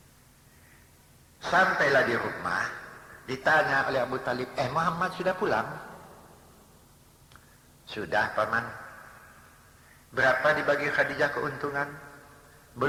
Sampailah di rumah, ditanya oleh Abu Talib, Muhammad sudah pulang? Sudah paman. Berapa dibagi Khadijah keuntungan?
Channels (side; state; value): both; identical; correlation 1.00